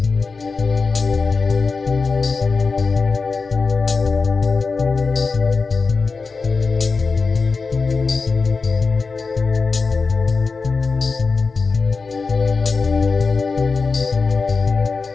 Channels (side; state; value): right; quieter; 4.4 dB